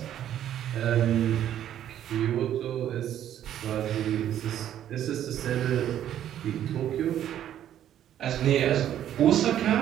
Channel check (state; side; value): quieter; left; 11.0 dB